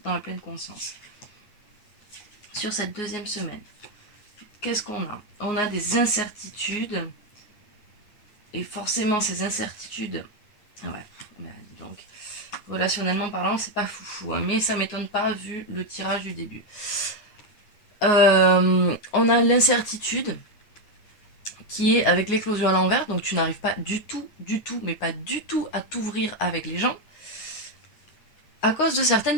dans la pleine conscience. Sur cette deuxième semaine, qu'est-ce qu'on a? On a des incertitudes et forcément ces incertitudes, ouais, donc relationnellement parlant, c'est pas foufou, hein, mais ça m'étonne pas vu le tirage du début. On a l'incertitude qui est avec l'éclosion à l'envers, donc tu n'arrives pas du tout, mais pas du tout à t'ouvrir avec les gens à cause de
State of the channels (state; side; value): late; right; 9.4 ms